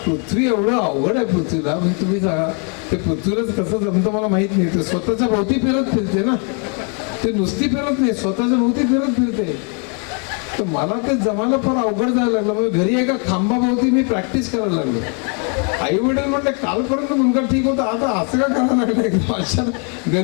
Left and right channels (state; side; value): quieter; right; 38.3 dB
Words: एवढं अवघड आहे पृथ्वीला. म्हणजे तुम्ही सांगा ते पृथ्वीलाच कसं जमतं मला माहित नाही. ते स्वतःच्या भोवती फिरते ना, ते नुसती फिरत नाही, स्वतःच्या भोवती फिरते. तर मला ते जमायला फार अवघड जायला लागलं. म्हणजे घरी एका खांबाभोवती मी प्रॅक्टिस करायला लागलो. आई वडील म्हणले कालपर्यंत मुलगा ठीक होता, आता असं का करायला लागलं एकदम अचानक